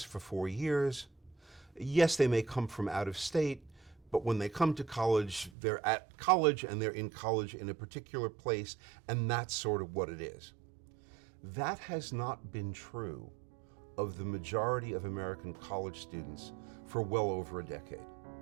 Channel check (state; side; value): drops out; left; at 5.5 s